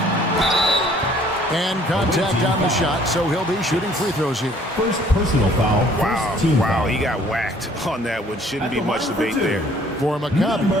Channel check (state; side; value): normal; both; correlation 0.57